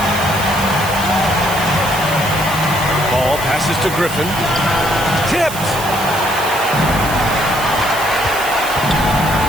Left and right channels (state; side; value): noise; right; hiss, 10 dB below the sound